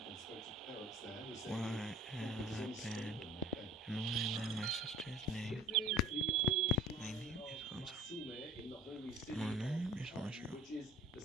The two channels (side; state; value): both; normal; correlation 0.48